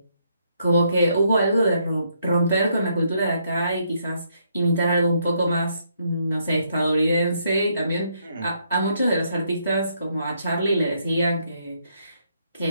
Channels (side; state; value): both; inverted; correlation -0.73